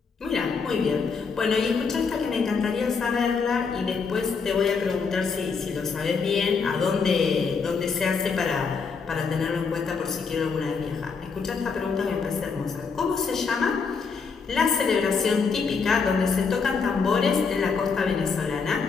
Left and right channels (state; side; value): quieter; right; 5.2 dB